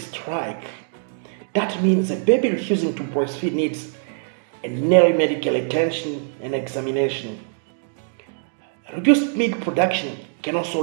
That means a baby refusing to breastfeed needs an early medical attention and examination. Reduced milk production can also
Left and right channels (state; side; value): silent; left; digital silence